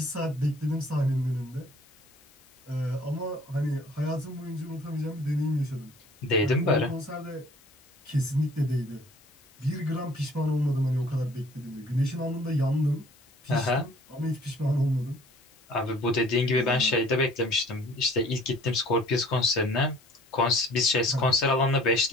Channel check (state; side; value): noise; left; hiss, 28 dB below the sound